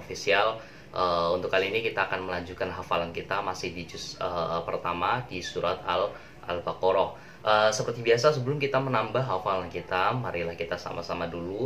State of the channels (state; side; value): identical; both; correlation 1.00